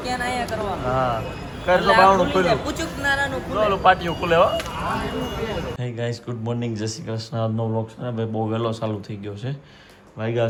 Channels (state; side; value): identical; both; correlation 1.00